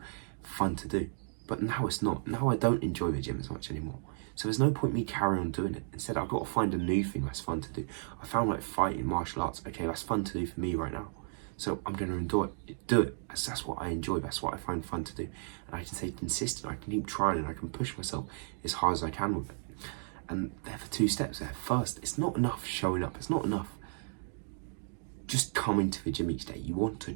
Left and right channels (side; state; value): left; silent; digital silence